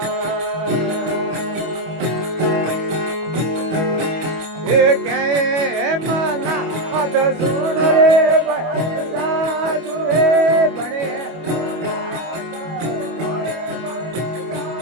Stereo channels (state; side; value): late; left; 25 ms